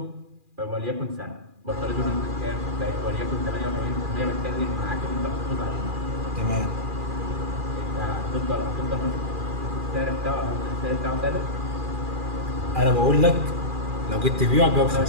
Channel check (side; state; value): left; late; 2.4 ms